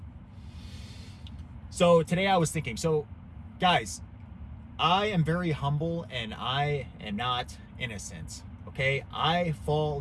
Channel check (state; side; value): identical; both; correlation 1.00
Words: So today I was thinking, guys, I am very humble and I am not innocent, okay? I